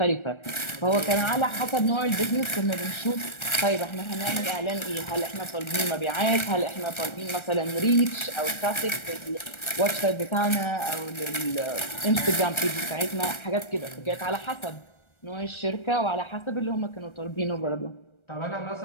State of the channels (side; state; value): right; late; 1.3 ms